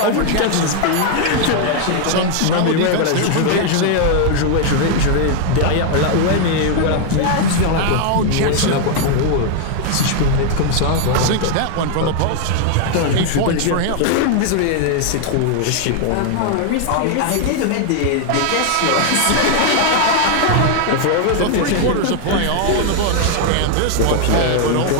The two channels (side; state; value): both; different; correlation 0.00